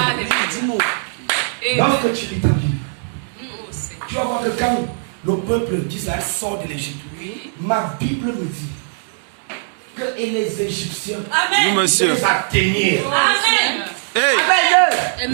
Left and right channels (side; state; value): left; silent; digital silence